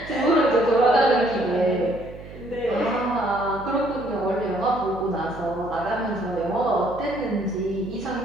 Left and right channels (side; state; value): right; noise; hum, 15 dB below the sound